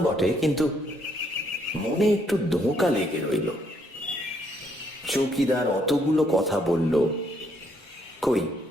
বটে, কিন্তু মনে একটু ধোঁকা লেগে রইল। চৌকিদার অতগুলো কথা বলল, কই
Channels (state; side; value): normal; both; correlation 0.71